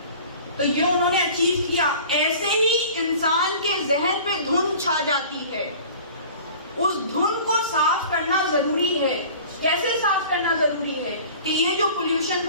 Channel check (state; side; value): inverted; both; correlation -0.43